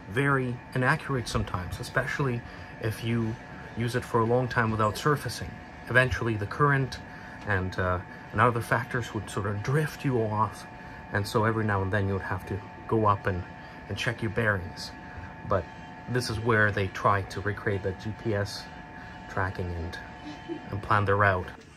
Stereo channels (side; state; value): both; identical; correlation 1.00